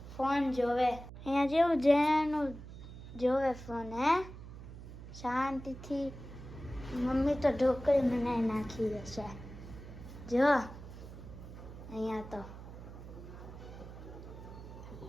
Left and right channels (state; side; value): noise; right; hum, 13 dB below the sound